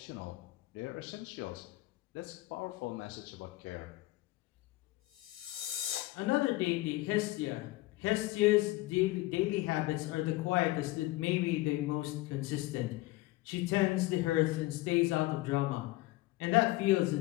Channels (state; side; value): quieter; right; 18.8 dB